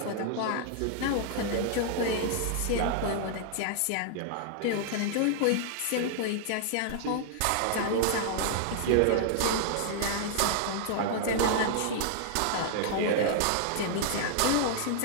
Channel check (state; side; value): different; both; correlation -0.01